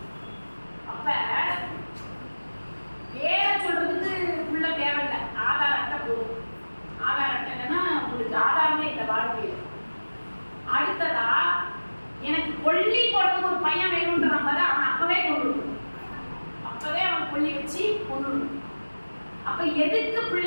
அப்ப பேரை சொல்றதுக்கு பிள்ளை தேவையில்லை, ஆதார் அட்டை போதும். ஆதார் அட்டை இல்லைன்னா உங்களுக்கு ஆதாரமே இல்லை வாழ்க்கையில். அடுத்ததா எனக்கு கொல்லி போடுறதுக்கு ஒரு பையன் வேணும்ன்ற மாதிரி அவன் அப்பவே கொண்டு வரணும், அப்பவே அவன் கொல்லி வச்சு கொண்டு வரணும். அப்ப எதுக்கு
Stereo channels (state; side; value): inverted; both; correlation -1.00